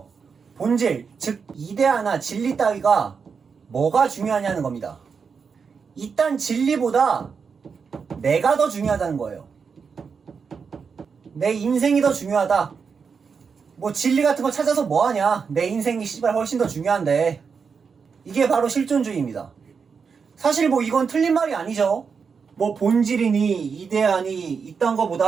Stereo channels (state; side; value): quieter; left; 5.8 dB